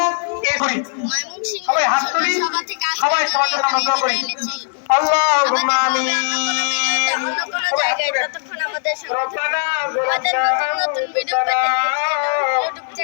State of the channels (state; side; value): silent; right; digital silence